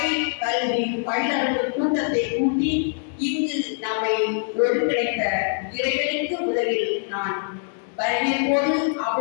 கல்வி பயிலர்கள் கூட்டத்தை கூட்டி இங்கு நம்மை ஒருங்கிணைத்த இறைவனுக்கு முதலில் நான் வரவேற்போடு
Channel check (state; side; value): silent; right; digital silence